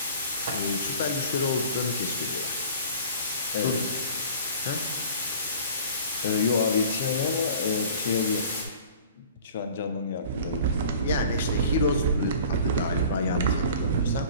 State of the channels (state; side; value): inverted; both; correlation -0.45